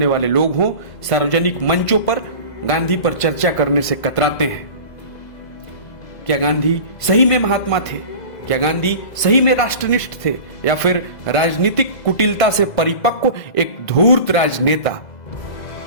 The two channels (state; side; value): late; right; 2.0 ms